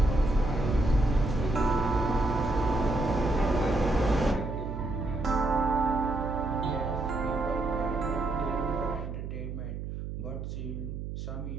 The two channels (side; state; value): right; noise; hum, 7 dB below the sound